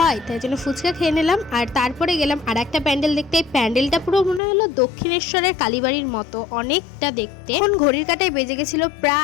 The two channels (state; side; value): drops out; right; at 4.4 s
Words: তাই জন্য ফুচকা খেয়ে নিলাম। আর তারপরে গেলাম আর একটা প্যান্ডেল দেখতে। এই প্যান্ডেলটা পুরো মনে হলো দক্ষিণেশ্বরের কালীবাড়ির মতো, অনেকটা দেখতে। এখন ঘড়ির কাঁটায় বেজে গেছিলো